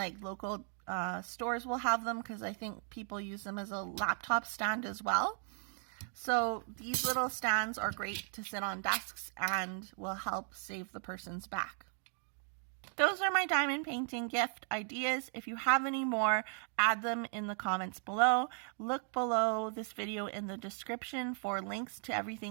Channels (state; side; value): silent; left; 53 dB below the other